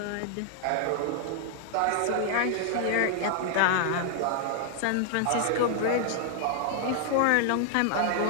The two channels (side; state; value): both; different; correlation -0.01